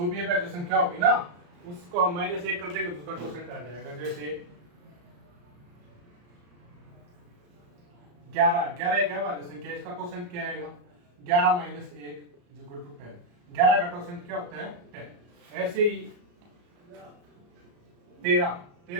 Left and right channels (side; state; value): left; late; 34 ms